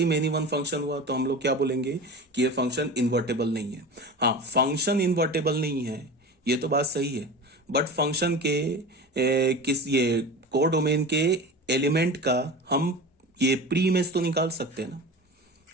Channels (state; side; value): normal; both; correlation 0.32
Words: मेनी वन फंक्शन हुआ तो हम लोग क्या बोलेंगे कि ये फंक्शन इन्वर्टेबल नहीं है। हाँ, फंक्शन इन्वर्टेबल नहीं है, ये तो बात सही है, बट फंक्शन के किस ये कोर डोमेन के एलिमेंट का हम ये प्री इमेज तो निकाल सकते हैं ना।